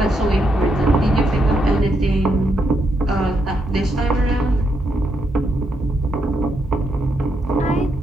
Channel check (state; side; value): normal; both; correlation 0.80